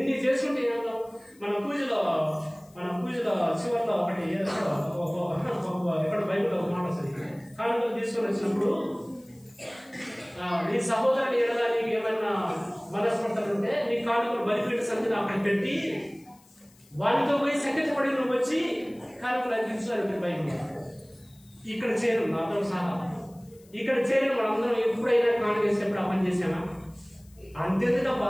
చేసుకుంటే ఏం లాభం? మన పూజలో చివరిలో ఒకటి ఎక్కడ బైబిల్లో ఒక మాట వస్తుంది. కానుకలు తీసుకొని వచ్చినప్పుడు నీ సహోదరుని ఎడలా నీకు ఏమైనా మనస్పర్ధలు ఉంటే నీ కానుకలు బలిపీఠ సంధిని అక్కడ పెట్టి వాటితో పోయి సంకటపడి నువ్వు వచ్చి కానుకలు అందించాలి. బైబిల్ ఇక్కడ చేరు నాతో సహా ఇక్కడ చేరు మనందరం ఎప్పుడైనా కానుక వేసినప్పుడు ఆ పని చేసామా? అంతేందుకు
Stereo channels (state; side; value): noise; left; hiss, 29 dB below the sound